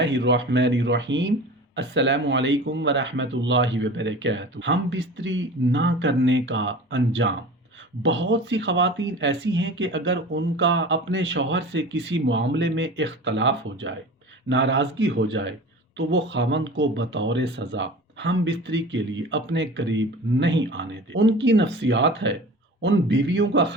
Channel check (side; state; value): both; normal; correlation 0.37